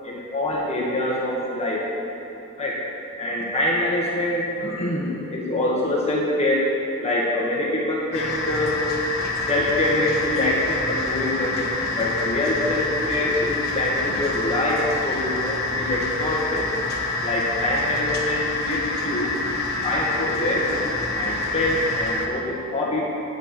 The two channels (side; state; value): both; normal; correlation 0.15